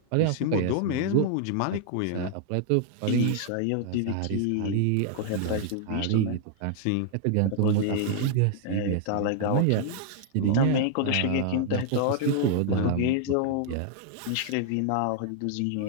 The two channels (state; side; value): different; both; correlation -0.01